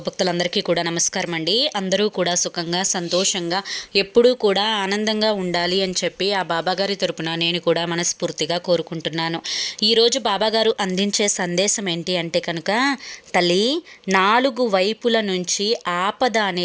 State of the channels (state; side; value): identical; both; correlation 1.00